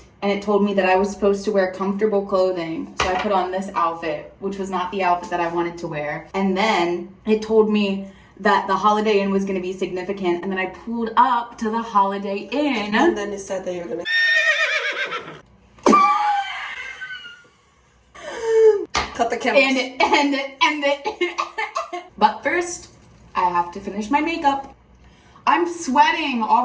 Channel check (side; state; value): both; identical; correlation 1.00